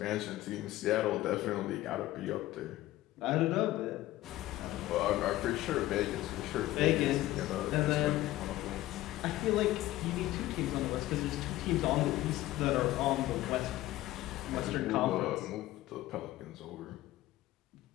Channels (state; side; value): quieter; right; 16.1 dB